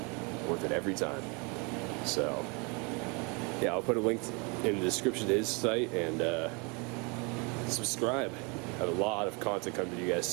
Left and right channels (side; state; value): left; quieter; 31.3 dB